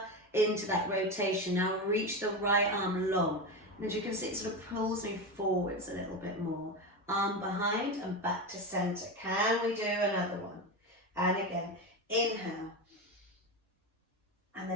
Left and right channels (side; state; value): both; normal; correlation 0.18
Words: into that rotation. Now reach the right arm long. And as you can see, it sort of pulls me forwards a little bit more. Arm behind and back to center. Can we do another one? And again, inhale. And